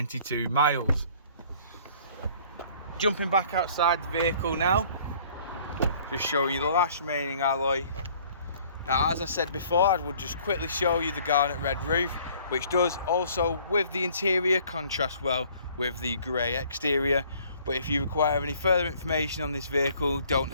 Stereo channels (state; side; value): inverted; both; correlation -0.56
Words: miles. Jumping back outside the vehicle now, just showing you the last remaining alloy. Now, as I said before, I would just quickly show you the garnet red roof, which does also, with the interior, contrast well with the grey exterior. But if you require any further information on this vehicle, don't